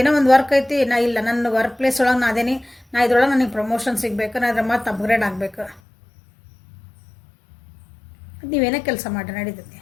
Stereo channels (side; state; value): right; drops out; at 5.8 s